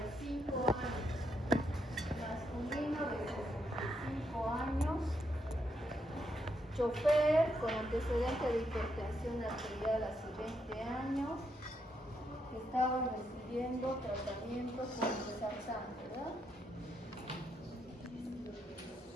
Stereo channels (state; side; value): normal; both; correlation 0.79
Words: años, masculino de 65 años, chofer con antecedente de hipertensión arterial hace 20 años, estaba recibiendo tratamiento con Losartan, ¿verdad?